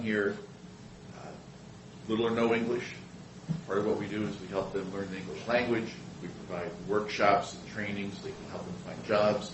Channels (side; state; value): both; identical; correlation 1.00